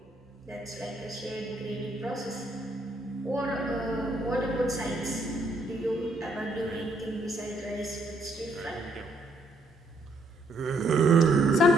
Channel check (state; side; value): normal; both; correlation 0.70